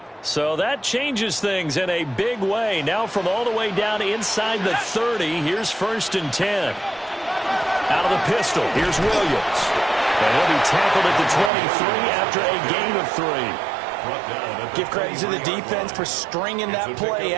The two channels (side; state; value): left; drops out; at 11.5 s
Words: So that changes things in a big way. Now from all the way down inside the 30, here's 1st and 10. Out of the pistol, here's Williams. And he'll be tackled at the 23 after a gain of 3. Give credit to the defense for stringing that play